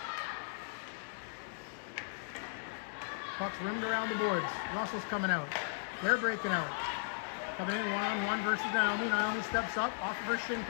Puck's rimmed around the boards. Russell's coming out. They're breaking out. Coming in one-on-one versus Naomi. Naomi steps up off of her shin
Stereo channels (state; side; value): silent; right; digital silence